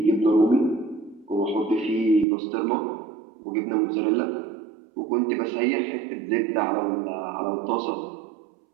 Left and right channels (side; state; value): left; drops out; at 2.2 s